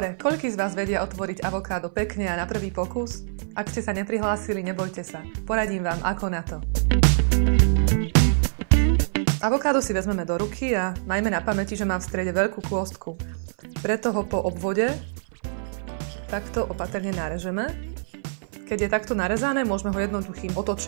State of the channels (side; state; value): left; silent; 58 dB below the other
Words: koľký z vás vedia otvoriť avokádo pekne a na prvý pokus? Ak ste sa neprihlásili, nebojte sa. Poradím vám, ako na to. Avokádo si vezmeme do ruky a majme na pamäti, že má v strede veľkú kôstku. Preto ho po obvode takto opatrne narežeme. Keď je takto narezané, môžeme ho jednoduchým